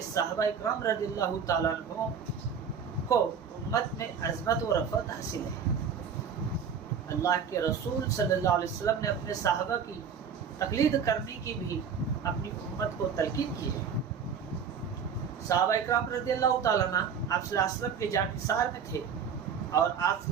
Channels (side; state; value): left; quieter; 6.8 dB